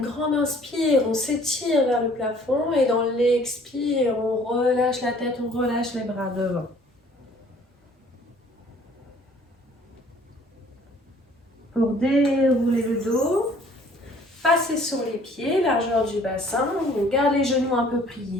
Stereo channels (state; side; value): normal; both; correlation 0.56